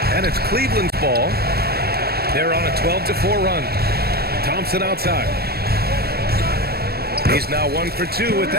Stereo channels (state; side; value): late; left; 0.46 ms